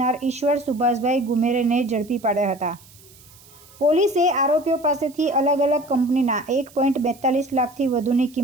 ઈશ્વર સુભાષભાઈ ગુમેરેને ઝડપી પાડ્યા હતા। પોલીસે આરોપીઓ પાસેથી અલગ અલગ કંપનીના 1.42 લાખથી વધુની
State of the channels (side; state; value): right; noise; hiss, 24 dB below the sound